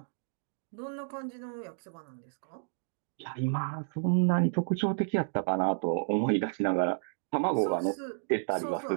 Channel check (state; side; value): silent; left; digital silence